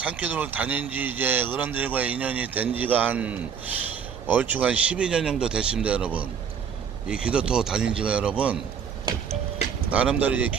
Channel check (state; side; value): quieter; left; 7.1 dB